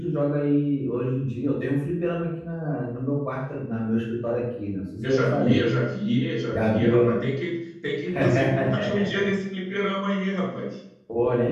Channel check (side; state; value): both; identical; correlation 1.00